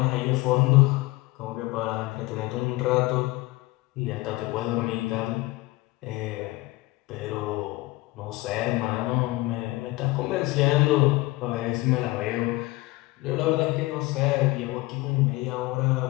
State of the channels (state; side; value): quieter; right; 20.6 dB